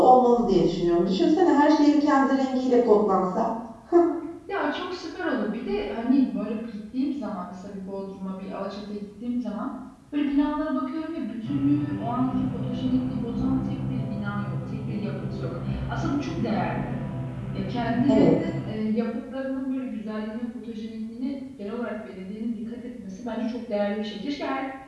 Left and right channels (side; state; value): both; identical; correlation 1.00